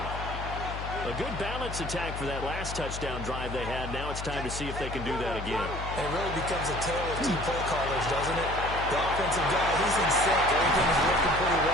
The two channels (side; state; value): left; noise; hum, 7 dB below the sound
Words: A good balance attack for that last touchdown drive they had. Now it's time to see if they can do that again. And it really becomes a tale of 2 play callers, doesn't it? The offensive guy, he's in sync. Everything is working pretty